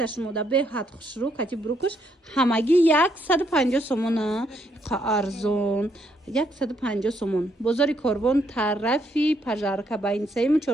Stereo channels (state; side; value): normal; both; correlation 0.73